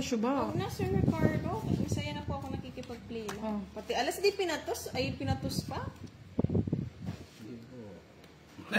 Huwag na, Sir Ricardo. Masaya na po ako nakikipag-play. Oh. Pati alas di pinatos. Ay, pinatos pa.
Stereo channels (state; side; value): identical; both; correlation 1.00